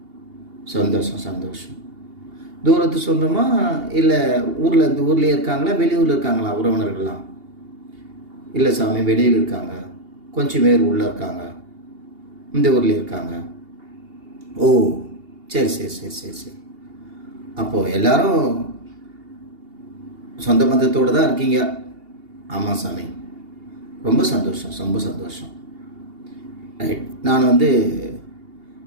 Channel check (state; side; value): late; left; 2.8 ms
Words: சந்தோஷம். தூரத்து சொந்தமா இல்லை ஊர்லேயே இருக்காங்களா, வெளியூரில் இருக்காங்களா உறவினர்கள்லாம்? இல்லை சாமி, வெளியில் இருக்காங்க, கொஞ்சம் பேர் உள்ளே இருக்காங்க, இந்த ஊர்லேயே இருக்காங்க. ஓ, சரி. அப்போது எல்லாரும் சொந்த பந்தத்தோடு தான் இருக்கீங்க? ஆமாம் சாமி, ரொம்ப சந்தோஷம். ரைட். நான்